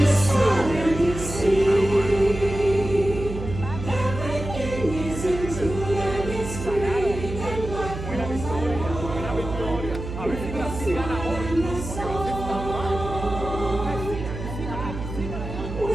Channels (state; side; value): noise; right; hum, 8 dB below the sound